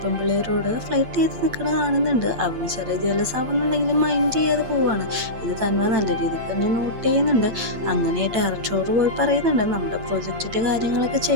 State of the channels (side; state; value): left; late; 8.3 ms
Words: പെമ്പിള്ളേരോട് ഫ്ലൈറ്റ് ചെയ്ത് നിൽക്കണ കാണുന്നുണ്ട്. അവന് ചെറിയ ജലസ് ആവുന്നുണ്ടെങ്കിലും മൈൻഡ് ചെയ്യാതെ പോവാണ്. ഇത് തൻവ നല്ല രീതിക്ക് തന്നെ നോട്ട് ചെയ്യുന്നുണ്ട്. അങ്ങനെ ഡയറക്ടറോട് പോയി പറയുന്നുണ്ട്, നമ്മുടെ പ്രൊജക്റ്റിൻ്റെ കാര്യങ്ങളൊക്കെ